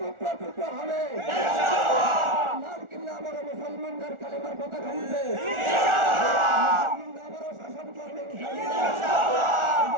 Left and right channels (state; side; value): late; left; 1.4 ms